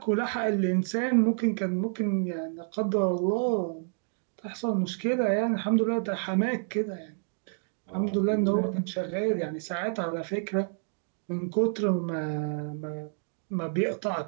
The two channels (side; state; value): left; silent; 55 dB below the other